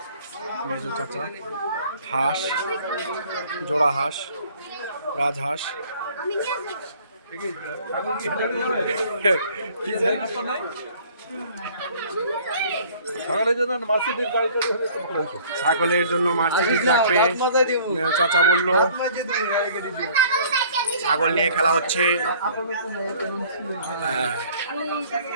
মেজো চাচা, হাঁস, জোড়া হাঁস, রাজহাঁস। ছাগলের জন্য মার্সিডিজ লাগবে। চাচা বললো ছাগল নিয়ে খেলা হচ্ছে।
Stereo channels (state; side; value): inverted; both; correlation -0.53